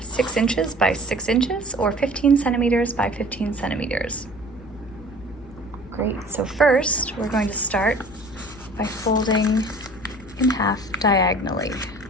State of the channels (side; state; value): left; noise; hum, 20 dB below the sound